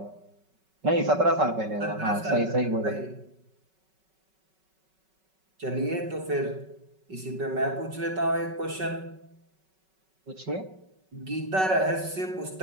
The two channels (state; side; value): late; left; 5.3 ms